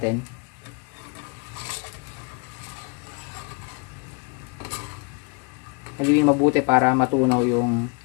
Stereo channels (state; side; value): quieter; right; 34.7 dB